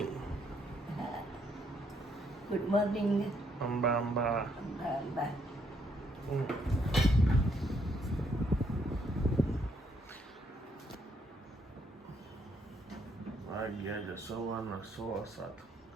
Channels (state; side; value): normal; both; correlation 0.72